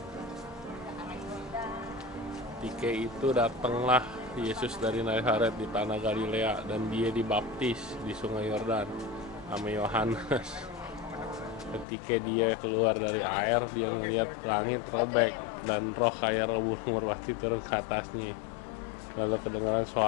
Ketika itu datanglah Yesus dari Nazaret di tanah Galilea dan dia dibaptis di Sungai Yordan sama Yohanes. Ketika dia keluar dari air, dia melihat langit robek dan roh kayak burung merpati turun ke atasnya. Lalu kedengaran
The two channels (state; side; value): drops out; right; at 11.9 s